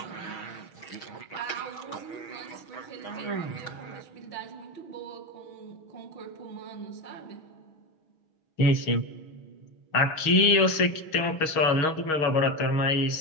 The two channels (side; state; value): right; late; 6.3 ms